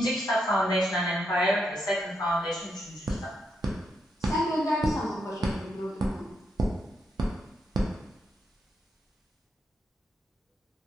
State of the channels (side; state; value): both; normal; correlation 0.81